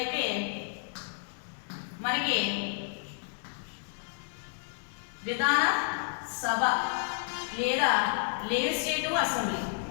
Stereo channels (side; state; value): right; silent; digital silence